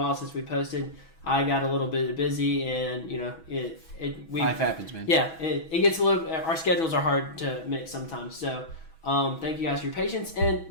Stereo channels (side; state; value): right; late; 6.2 ms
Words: since we posted. I got a little bit busy, and Life happens, man. Yeah, it gets a little. Our schedules are hard to mix sometimes. So, thank you guys for your patience.